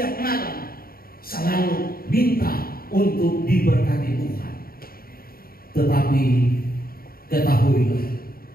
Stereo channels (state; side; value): late; right; 0.43 ms